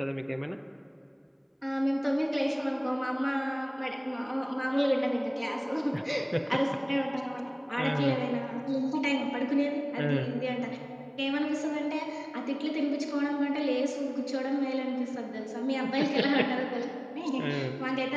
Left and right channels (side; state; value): both; identical; correlation 1.00